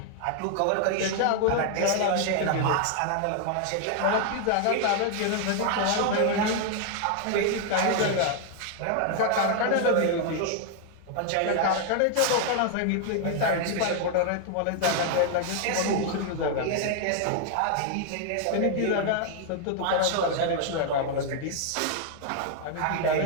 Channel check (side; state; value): both; different; correlation 0.00